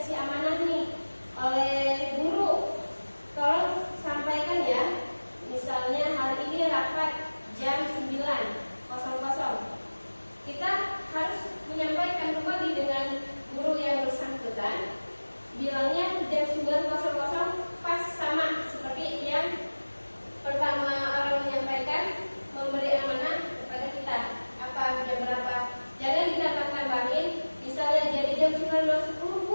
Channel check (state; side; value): inverted; both; correlation -1.00